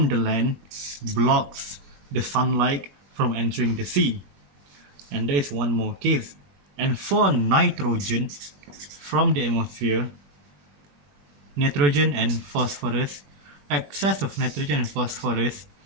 the land blocks the sunlight from entering the sea. And there is one more case. And for nitrogen from the atmosphere, nitrogen and phosphorus, excess of nitrogen and phosphorus,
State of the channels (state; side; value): late; left; 21 ms